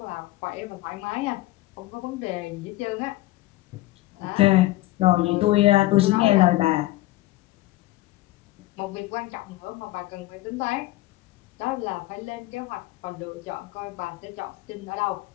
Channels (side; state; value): right; quieter; 17.5 dB